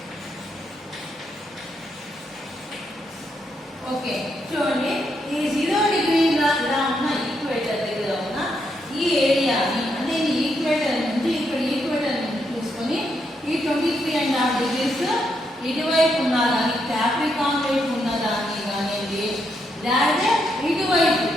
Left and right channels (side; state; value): both; normal; correlation 0.79